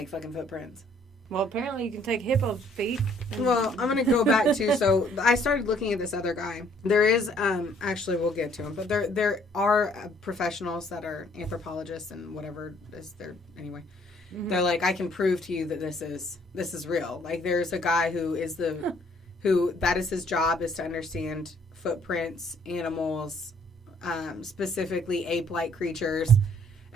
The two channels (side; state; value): both; normal; correlation 0.62